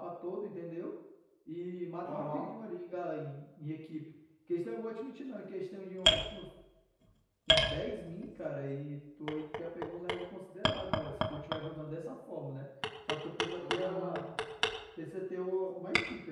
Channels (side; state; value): both; identical; correlation 1.00